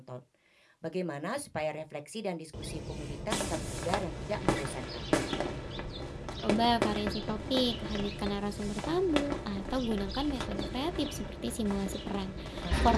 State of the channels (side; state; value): both; identical; correlation 1.00